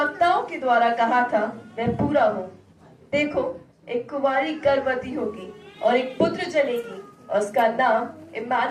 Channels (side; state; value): both; identical; correlation 1.00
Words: के द्वारा कहा था वह पूरा हो। देखो, एक कुंवारी गर्भवती होगी और एक पुत्र जनेगी और उसका नाम